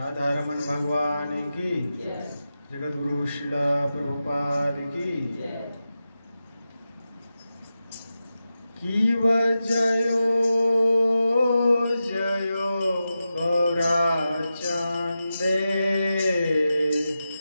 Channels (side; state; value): both; inverted; correlation -0.91